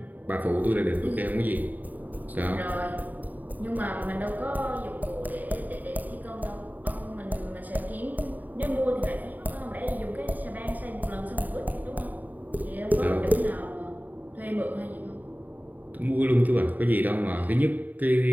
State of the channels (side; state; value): left; late; 0.083 ms